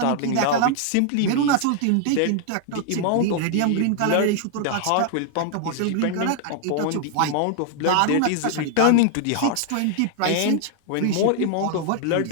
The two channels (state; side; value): different; both; correlation 0.00